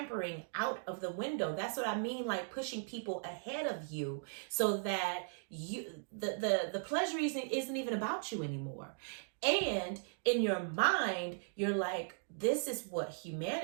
out of the window. That's what I mean, like pushing people ahead of you so that you the pleasure isn't even about you anymore. And in your mind, you're like, this is what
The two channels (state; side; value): silent; left; digital silence